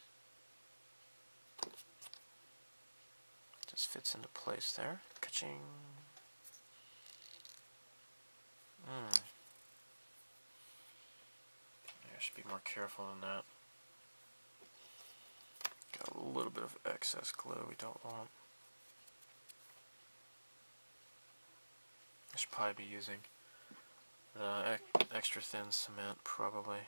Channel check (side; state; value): both; inverted; correlation -1.00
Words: Just fits into place there. Ka-ching. I should be more careful than that. Got a little bit of excess glue we don't want. I should probably be using the extra thin cement, probably.